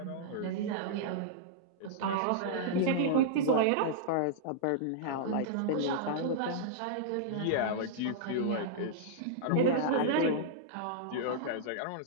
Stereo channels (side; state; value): both; different; correlation -0.02